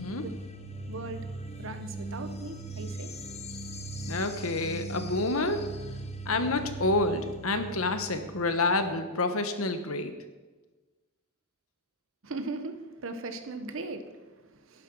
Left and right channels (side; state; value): both; normal; correlation -0.02